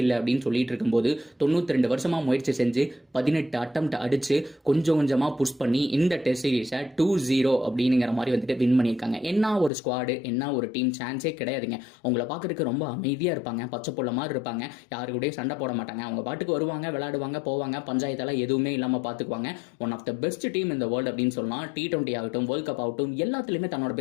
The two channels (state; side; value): drops out; right; at 9.7 s